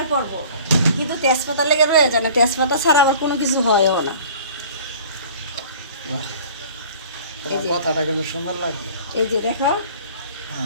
পড়বো, কিন্তু তেজপাতা লেগে রয়ে যায় না, তেজপাতা ছাড়া আবার কোনো কিছু হয়ও না। কথাটা কিন্তু সুন্দর লাগলো। এই যে দেখো,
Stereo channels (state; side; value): inverted; both; correlation -0.47